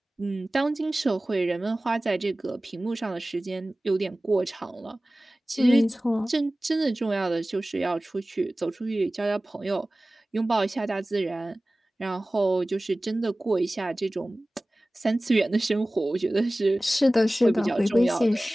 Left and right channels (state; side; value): normal; both; correlation 0.97